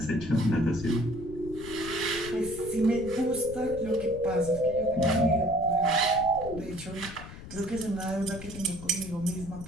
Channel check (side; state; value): left; noise; rumble, 13 dB below the sound